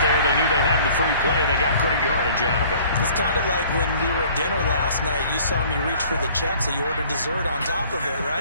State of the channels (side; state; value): both; inverted; correlation -0.52